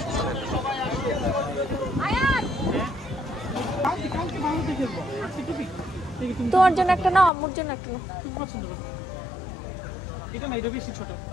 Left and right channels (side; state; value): right; drops out; at 7.3 s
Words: তোমার জন্য একটা নাও, আম্মুর জন্য একটা নাও।